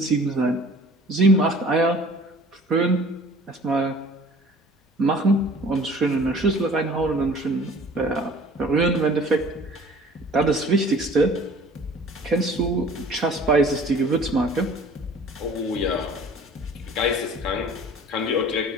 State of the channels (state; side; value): normal; both; correlation 0.48